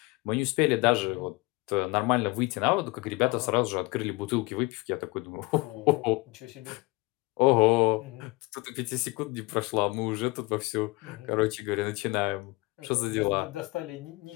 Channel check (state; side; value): quieter; right; 23.3 dB